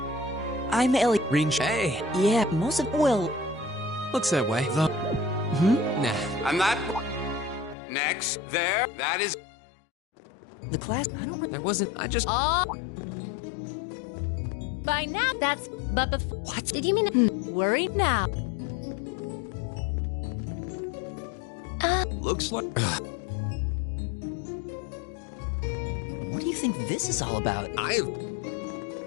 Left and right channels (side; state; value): right; drops out; at 7.8 s